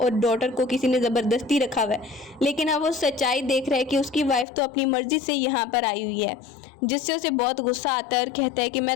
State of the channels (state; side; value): drops out; right; at 4.5 s